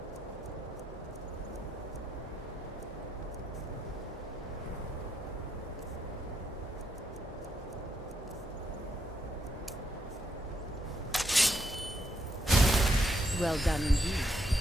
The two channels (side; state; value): both; normal; correlation 0.77